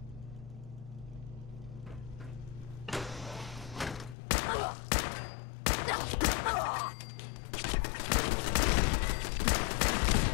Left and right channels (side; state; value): right; drops out; at 4.2 s